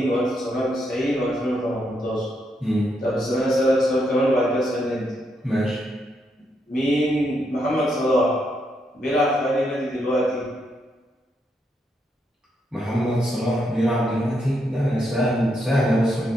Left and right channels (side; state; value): both; normal; correlation 0.79